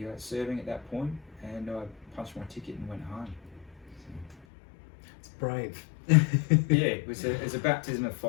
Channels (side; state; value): right; drops out; at 4.5 s